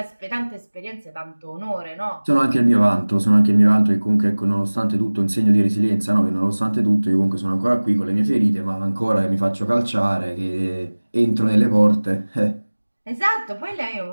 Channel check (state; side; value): inverted; both; correlation -1.00